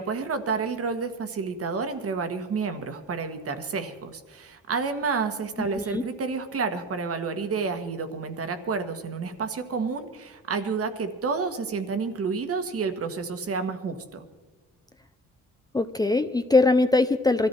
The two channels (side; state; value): both; normal; correlation 0.41